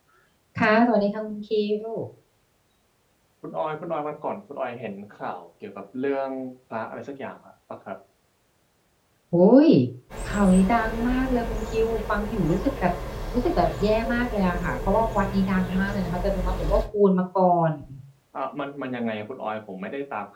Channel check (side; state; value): both; identical; correlation 1.00